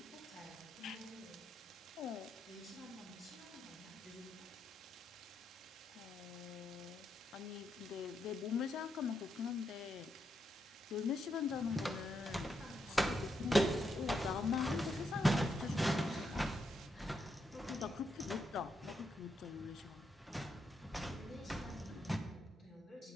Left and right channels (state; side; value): normal; both; correlation 0.81